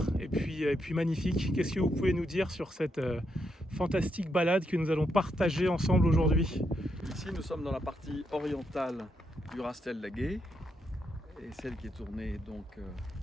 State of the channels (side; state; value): both; normal; correlation 0.80